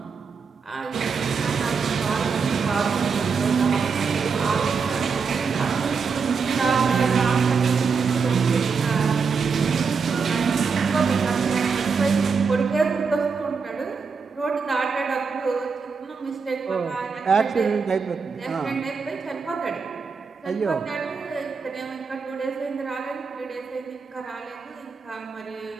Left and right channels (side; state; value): left; quieter; 5.4 dB